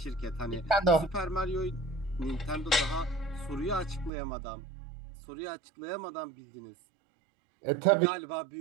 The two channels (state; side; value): drops out; left; at 4.1 s